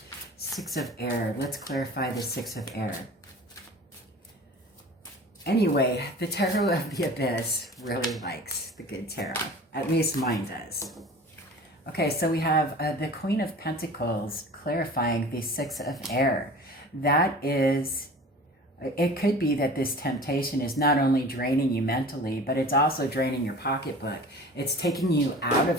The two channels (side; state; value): both; normal; correlation 0.41